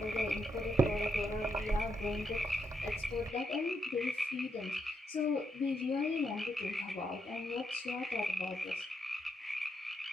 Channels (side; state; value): both; normal; correlation 0.80